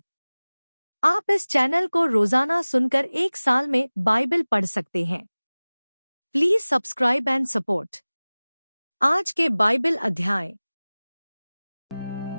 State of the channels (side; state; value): both; inverted; correlation -0.99